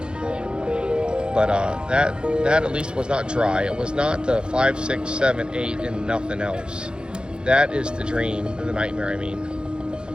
But that at least was not dry. It was not the 5, 6, 7, 8 and nothing else. That is the dream, or the nightmare, I mean.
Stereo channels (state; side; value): late; left; 0.050 ms